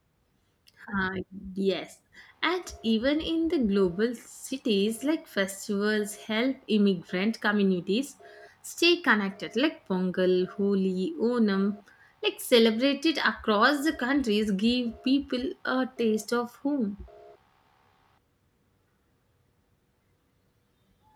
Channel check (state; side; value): identical; both; correlation 1.00